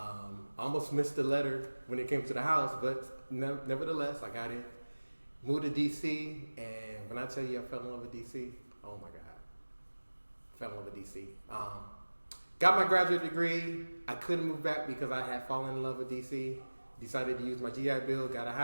Almost missed the letter when it came to the house, but nevertheless, I got in. Moved to DC, and when I tell you I fell in love with DC, oh my God. Fell in love with DC. Got my graduate degree. I couldn't move back because I had fallen in love with DC. Decided to use my GI Bill, got a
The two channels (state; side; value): inverted; both; correlation -1.00